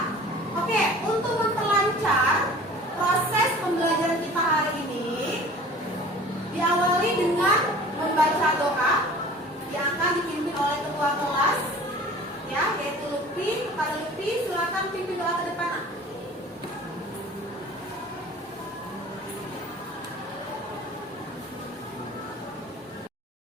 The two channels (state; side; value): normal; both; correlation 0.45